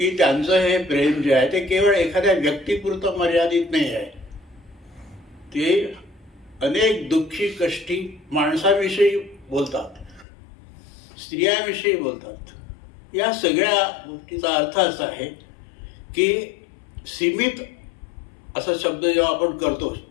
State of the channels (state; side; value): drops out; right; at 10.2 s